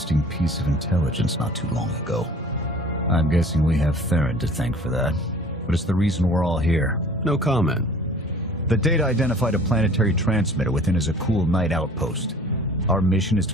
piece of intelligence not too long ago. I'm guessing we have Theron to thank for that, but it's the reason we're all here. No comment. The data identified a planetary transmitter within a Zakul night outpost. Our mission is to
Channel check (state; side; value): normal; both; correlation 0.48